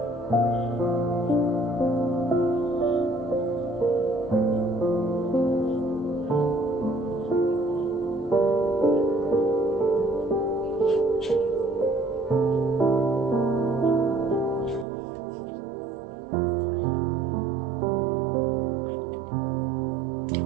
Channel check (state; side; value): drops out; left; at 14.9 s